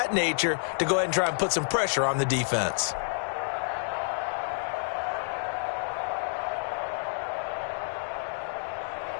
nature, to go ahead and try and put some pressure on the defense.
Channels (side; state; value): right; silent; digital silence